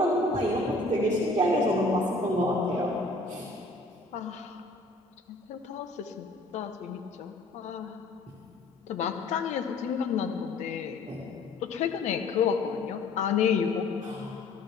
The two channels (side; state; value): right; quieter; 3.0 dB